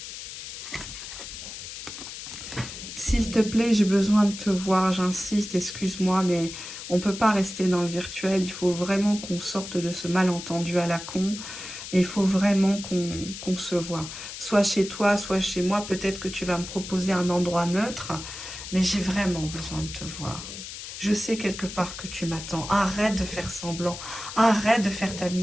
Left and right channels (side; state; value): left; noise; hiss, 10 dB below the sound